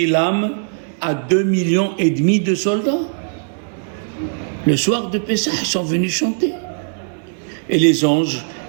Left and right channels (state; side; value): silent; left; digital silence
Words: l'âme à 2,5 millions de soldats. Le soir de Pessah, ils sont venus chanter. Et les anges,